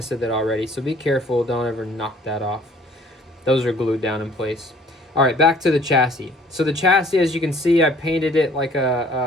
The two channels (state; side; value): normal; both; correlation 0.56